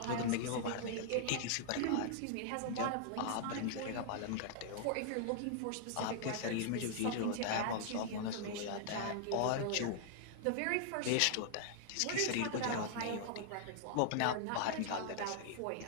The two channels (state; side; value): different; both; correlation -0.01